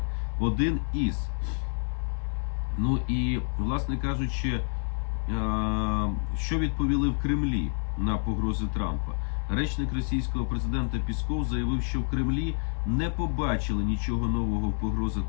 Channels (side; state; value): right; silent; 59 dB below the other